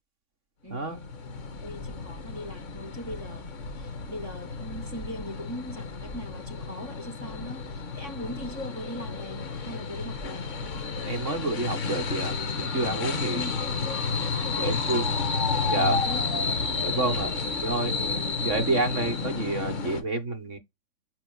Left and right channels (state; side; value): late; left; 3.6 ms